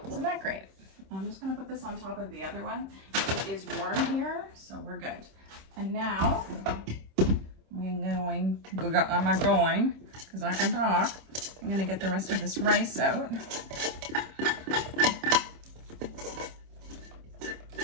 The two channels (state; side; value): late; left; 26 ms